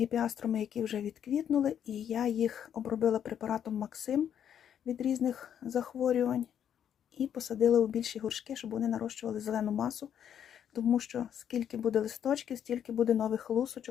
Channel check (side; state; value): right; quieter; 9.2 dB